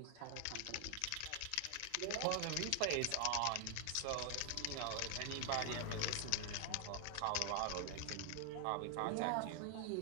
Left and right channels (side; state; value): both; different; correlation 0.00